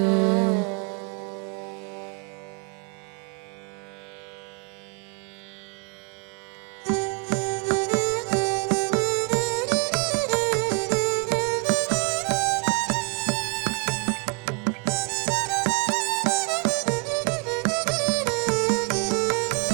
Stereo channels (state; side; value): quieter; left; 35.4 dB